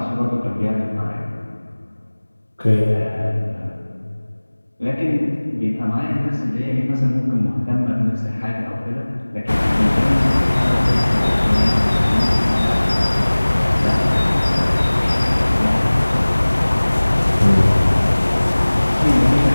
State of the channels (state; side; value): inverted; both; correlation -1.00